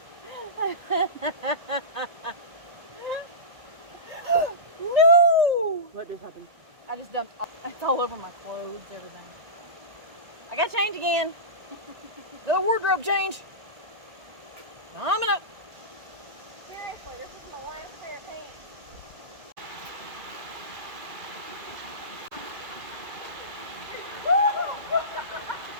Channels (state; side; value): late; left; 2.1 ms